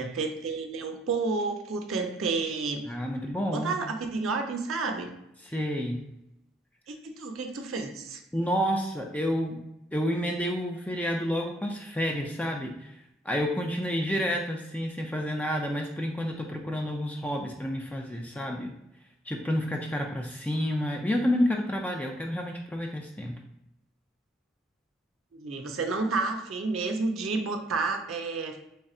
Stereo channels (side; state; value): both; normal; correlation 0.68